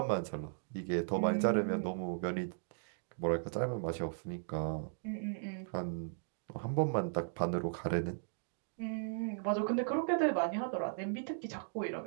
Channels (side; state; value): left; silent; digital silence